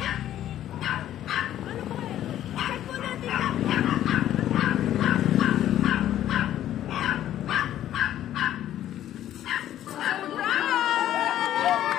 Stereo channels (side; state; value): right; quieter; 12.0 dB